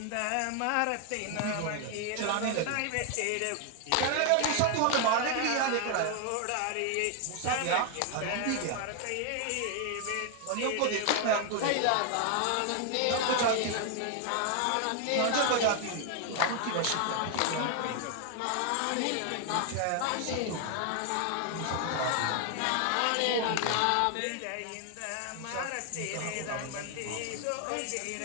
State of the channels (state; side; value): different; both; correlation 0.00